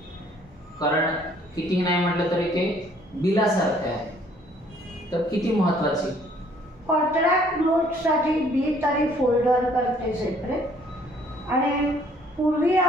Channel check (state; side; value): normal; both; correlation 0.61